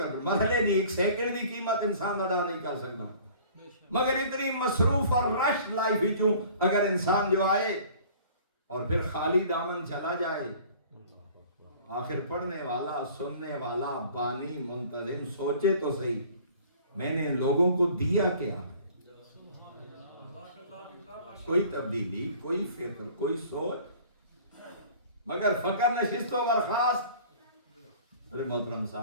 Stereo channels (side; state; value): both; inverted; correlation -0.49